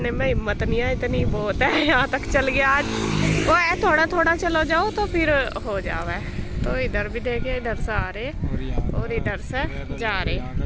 में हिम्मत नहीं है, इतनी बहुत है। यहाँ तक चल गया आज, वो है थोड़ा थोड़ा चलो जाओ तो फिर हो जावे। तो इधर भी देखिए, इधर से आ रहे और इधर से जा रहे। यहाँ का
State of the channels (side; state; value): both; identical; correlation 1.00